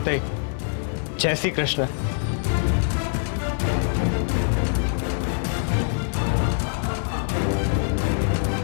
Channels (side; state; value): right; silent; digital silence